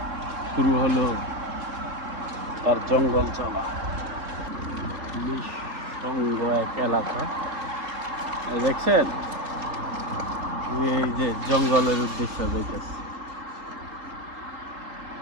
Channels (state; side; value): late; left; 3.7 ms